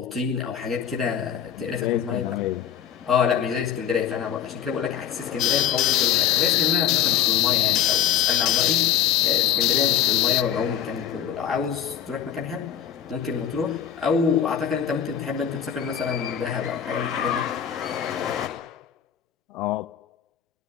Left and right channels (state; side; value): quieter; right; 9.2 dB